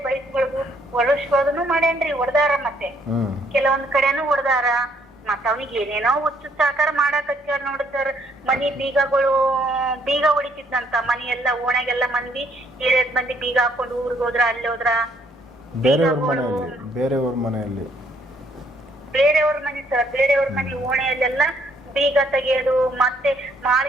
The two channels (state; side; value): normal; both; correlation 0.67